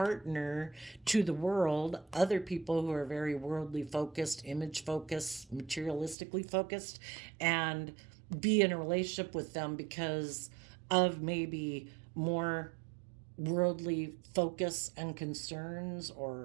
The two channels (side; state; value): left; drops out; at 6.2 s